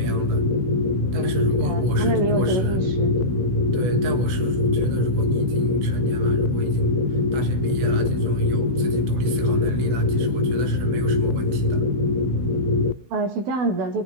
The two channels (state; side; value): late; left; 16 ms